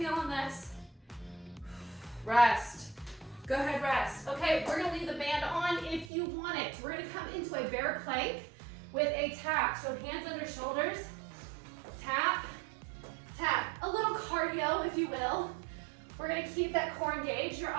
this. Rest. Go ahead, rest. Okay, we're gonna leave the band on if you want it. We're gonna come into a bear plank with a tap. So hands under shoulders, tap, tap. A little cardio, if you will. We're gonna keep that core engaged. Your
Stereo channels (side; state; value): left; drops out; at 6.1 s